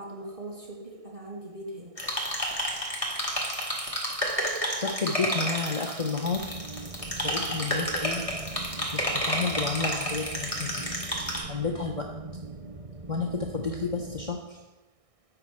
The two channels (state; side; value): late; left; 1.6 ms